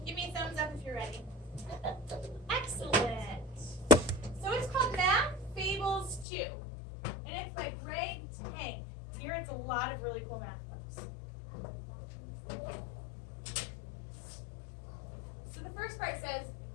Give me a thumbs up if you're ready. Excellent. So it's called Math Fables 2, and it's by Greg Tank. Here it's a lot of really cool math books. So the first part says,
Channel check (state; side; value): drops out; right; at 6.2 s